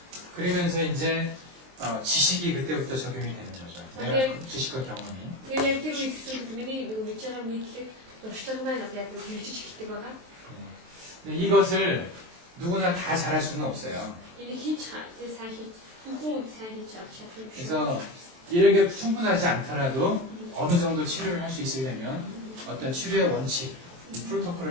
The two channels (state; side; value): late; left; 23 ms